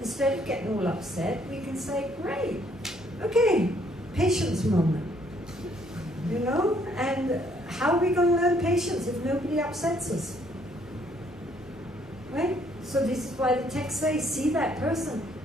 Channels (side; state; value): both; normal; correlation 0.66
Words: of getting all upset, we can say, great, okay, patience moment. And how are we going to learn patience if nobody upsets us? Right? So this is why the text says, see that person